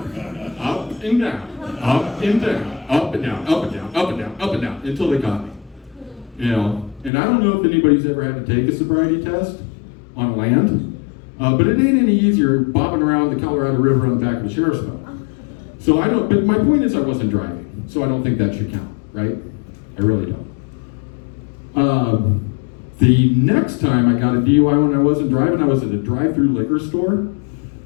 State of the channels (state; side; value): drops out; right; at 7.1 s